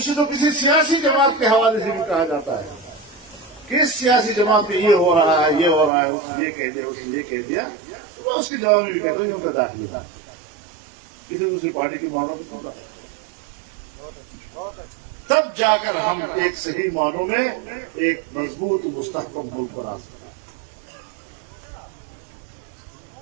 سے تو کسی سیاسی جماعت کے حوالے سے بھی کہا جاتا ہے کہ اس سیاسی جماعت میں یہ ہو رہا ہے، یہ ہو رہا ہے، اس نے یہ کہہ دیا، اس نے یہ کہہ دیا، تو میں اس کے جواب میں بھی کہتا ہوں یہ ان کا داخلے تھا، کسی دوسری پارٹی کی معنوں میں کیوں رہا. تب جا کر ہم ایک صحیح معنوں میں ایک مضبوط مستحکم ملک پر آ سکتے.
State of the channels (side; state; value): left; drops out; at 5.9 s